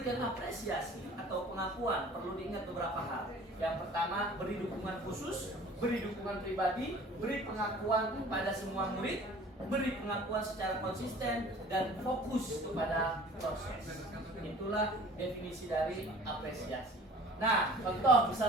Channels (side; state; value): both; normal; correlation 0.47